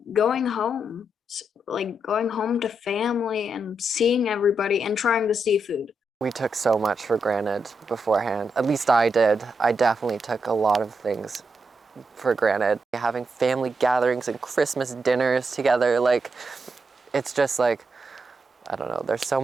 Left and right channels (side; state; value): both; normal; correlation 0.83